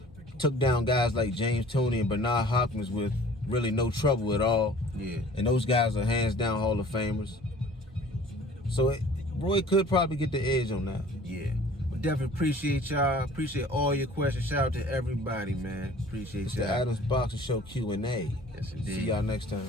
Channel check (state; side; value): normal; both; correlation 0.49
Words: took down guys like James Toney and Bernard Hopkins with really no trouble at all. Yeah. And those guys are hands down Hall of Famers. So Roy could probably get the edge on that. Yeah. But definitely appreciate y'all. Appreciate all your questions. Shout out to everybody, man. Appreciate y'all. It's the Adams Boxing Show Q&A. Yes, indeed. See y'all next